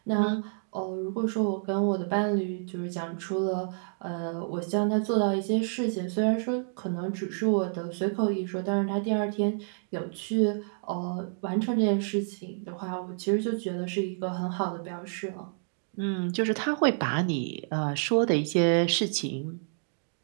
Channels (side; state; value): left; silent; digital silence